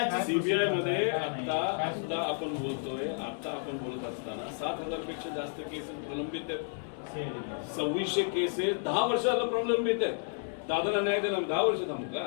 सीबीआय मध्ये आता आपण बोलतोय, आता आपण बोलत असताना 7,000 पेक्षा जास्त केसेस प्रलंबित आहेत. 2600 केसेस 10 वर्षाला प्रलंबित आहेत. दादाला न्याय दिला 10 वर्ष थांबू का?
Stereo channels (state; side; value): silent; right; 55 dB below the other